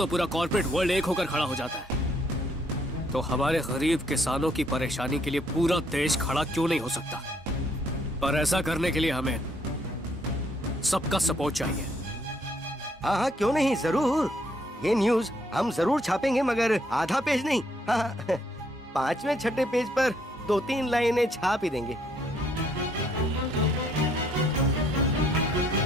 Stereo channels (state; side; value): normal; both; correlation 0.69